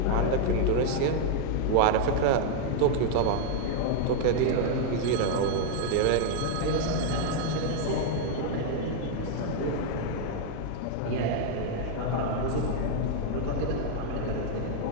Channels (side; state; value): both; different; correlation 0.00